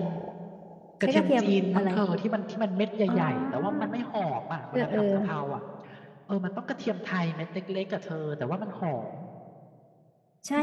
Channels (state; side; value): identical; both; correlation 1.00